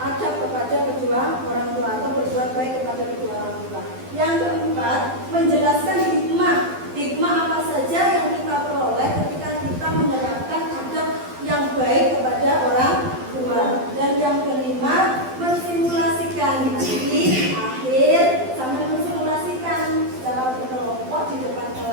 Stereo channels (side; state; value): left; late; 12 ms